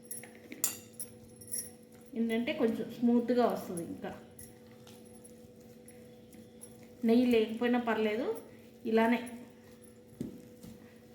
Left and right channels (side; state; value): both; identical; correlation 1.00